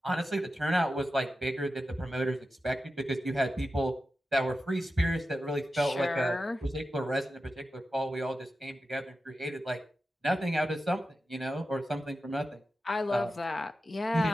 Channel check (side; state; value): both; normal; correlation 0.92